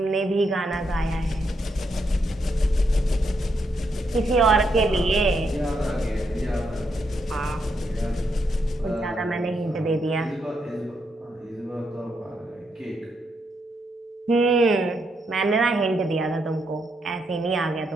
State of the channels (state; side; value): normal; both; correlation 0.79